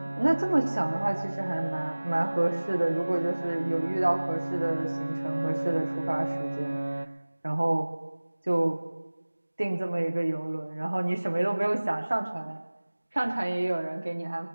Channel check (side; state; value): both; inverted; correlation -1.00